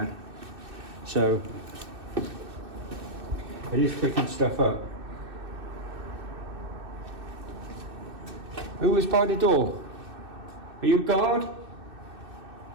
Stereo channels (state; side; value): late; left; 2.6 ms